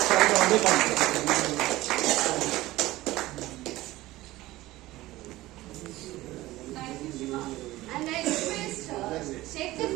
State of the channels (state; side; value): quieter; left; 17.5 dB